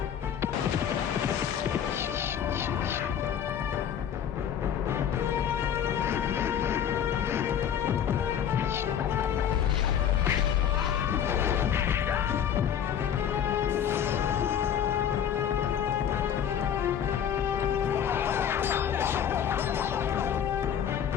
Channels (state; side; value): quieter; right; 8.9 dB